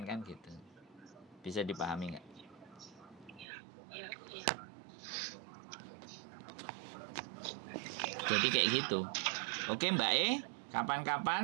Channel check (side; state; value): left; drops out; at 3.5 s